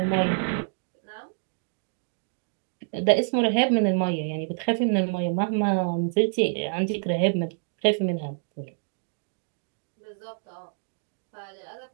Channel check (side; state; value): left; silent; digital silence